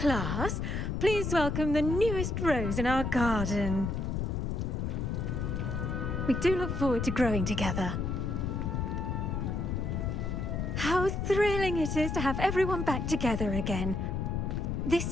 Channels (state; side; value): noise; left; rumble, 1 dB below the sound